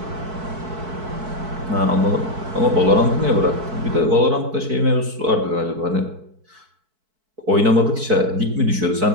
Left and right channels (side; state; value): left; late; 4.6 ms